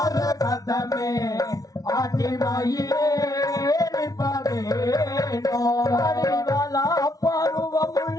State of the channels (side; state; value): right; late; 0.18 ms